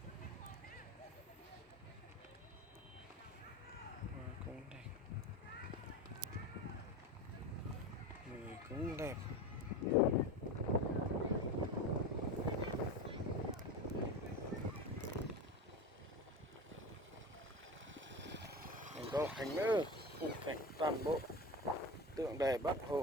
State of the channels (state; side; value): normal; both; correlation 0.27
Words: Hoa cũng đẹp, người cũng đẹp. Mình có hành nữa, khung cảnh toàn bộ tượng đài Bác